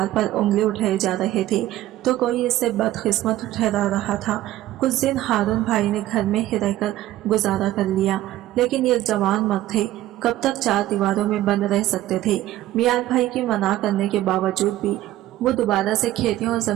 पर उंगली उठाए जा रहे थे तो कोई इससे बदकिस्मत ठहरा रहा था। कुछ दिन हारून भाई ने घर में ही रहकर गुजारा कर लिया, लेकिन ये जवान मर्द थे, कब तक चार दीवारों में बंद रह सकते थे। मियाद भाई की मना करने के बावजूद भी वो दोबारा से खेतियों और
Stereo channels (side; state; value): left; quieter; 14.7 dB